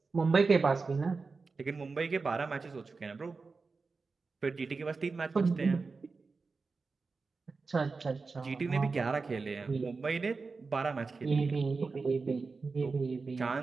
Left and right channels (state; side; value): quieter; left; 4.3 dB